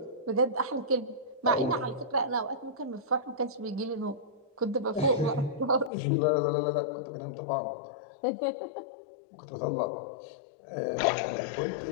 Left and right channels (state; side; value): drops out; right; at 5.9 s